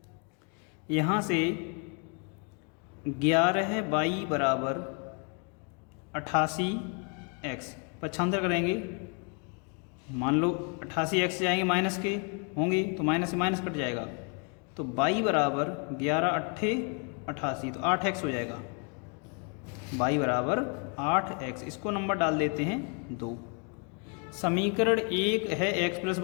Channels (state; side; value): quieter; right; 37.4 dB